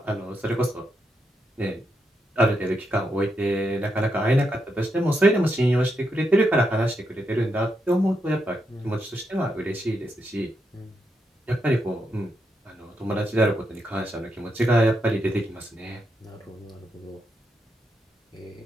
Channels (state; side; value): normal; both; correlation 0.82